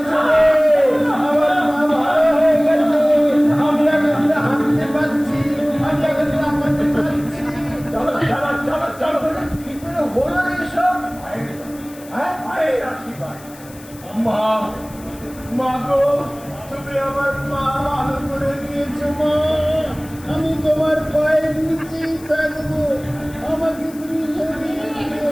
রে। আমার মা ভালো হয়ে গেছে। আমি এখন হাঁটতে পারছি। আমি এখন হাঁটতে পারছি। চলো চলো চলো চলো কি করে হলো রে এসব? হ্যাঁ? মায়ের আশীর্বাদ মা, মা গো, তুমি আমার মা ভালো করে দিয়েছো মা। আমি তোমার পায়ের নিচেই থাকবো। আমাকে তুমি সরিয়ে দিও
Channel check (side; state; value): left; noise; hiss, 21 dB below the sound